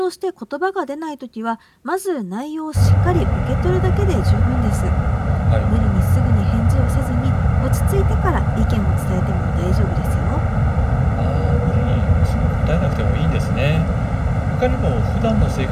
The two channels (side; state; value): both; identical; correlation 1.00